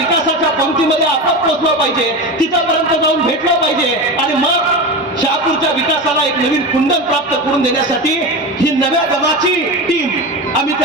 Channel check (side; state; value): both; normal; correlation 0.24